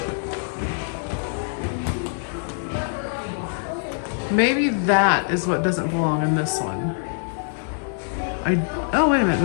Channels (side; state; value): right; silent; 63 dB below the other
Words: Maybe that is what doesn't belong in this one. Oh, wait a